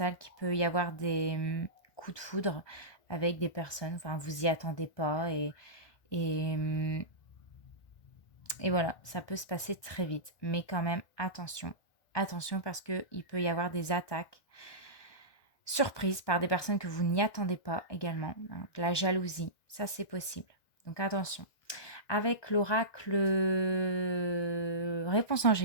qu'il peut y avoir des, coups de foudre avec des personnes, enfin vous y attendez pas et mmh et voilà, ça peut se passer très vite. Mais quand même attention, attention parce qu'il peut y avoir des attaques surprise par des personnes que vous n'y attendez pas également, hein, de la jalousie, ça c'est possible. Donc attention. Avec l'oracle réponse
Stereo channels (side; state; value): right; late; 1.2 ms